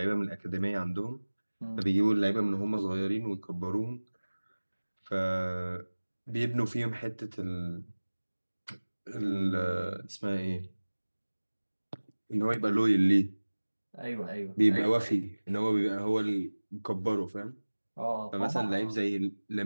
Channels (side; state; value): both; inverted; correlation -1.00